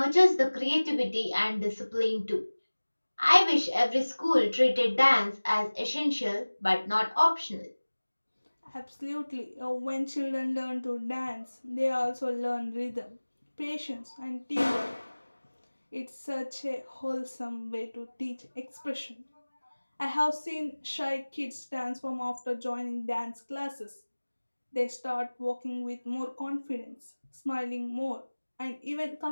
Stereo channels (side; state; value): both; inverted; correlation -1.00